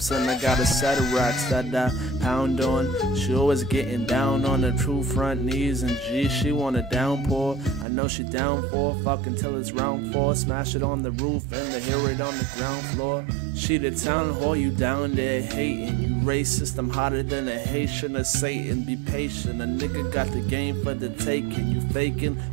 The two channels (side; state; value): left; drops out; at 7.9 s